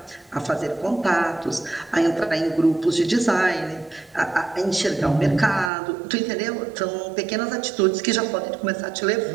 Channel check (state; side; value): drops out; left; at 5.7 s